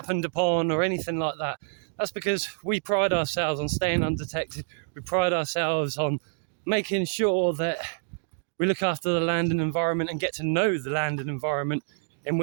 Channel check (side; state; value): left; silent; digital silence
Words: upon or anything like that. That's because we pride ourselves on staying undetected. We pride ourselves on making sure that we look after the land and environment and get to know the land and environment in